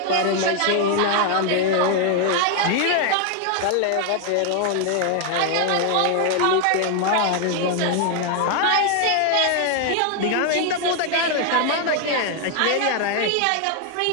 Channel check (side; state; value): both; different; correlation 0.00